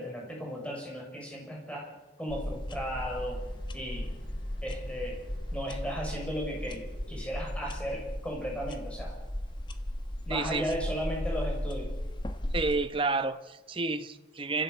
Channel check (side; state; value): both; normal; correlation 0.59